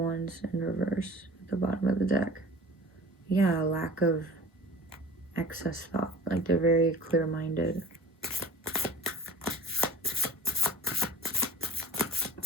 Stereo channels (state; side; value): normal; both; correlation 0.43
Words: in reverse at the bottom of the deck. Yeah, a lack of excess thought. Like they're very clear-minded.